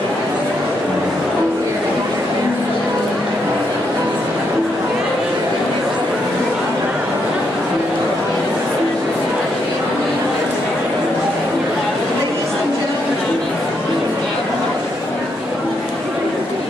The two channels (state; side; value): normal; both; correlation 0.78